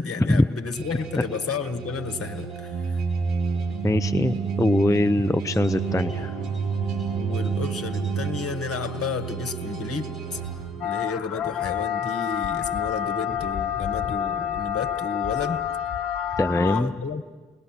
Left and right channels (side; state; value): both; normal; correlation 0.66